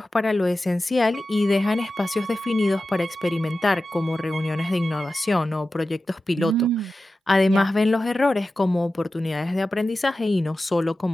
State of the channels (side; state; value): both; normal; correlation 0.94